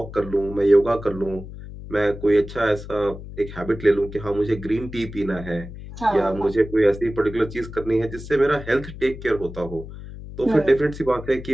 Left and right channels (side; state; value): left; noise; hum, 12 dB below the sound